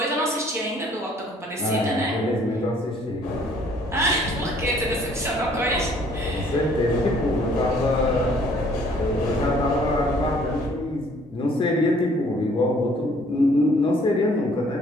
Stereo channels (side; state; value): both; normal; correlation 0.59